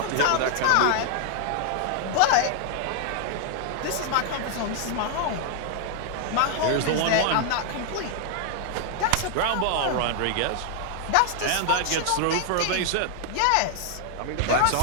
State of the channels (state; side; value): different; both; correlation 0.00